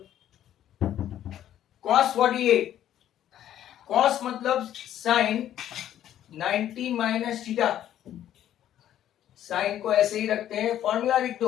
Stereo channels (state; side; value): quieter; right; 11.4 dB